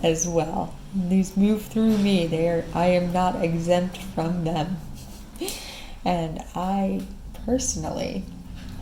as well. These move through me. I am not exempt from them. And I personally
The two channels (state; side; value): identical; both; correlation 1.00